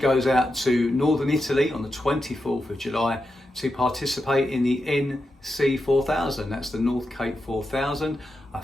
out to northern Italy on the 24th of July to participate in the NC 4000. That's the North Cape 4000, a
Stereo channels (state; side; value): normal; both; correlation 0.88